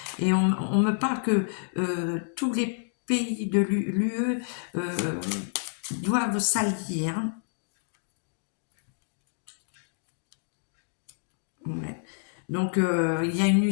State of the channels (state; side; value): silent; right; digital silence